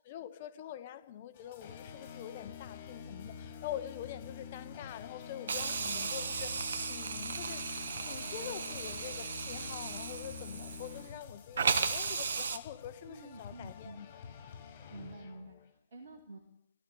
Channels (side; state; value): both; inverted; correlation -0.66